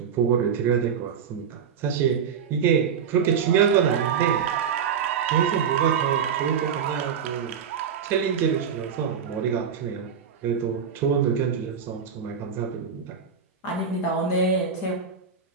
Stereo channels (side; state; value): left; quieter; 7.1 dB